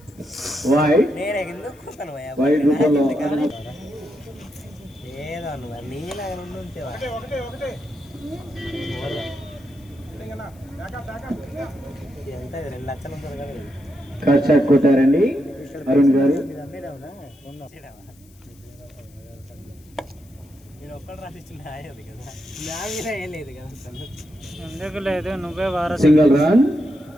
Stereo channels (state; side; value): noise; left; hiss, 29 dB below the sound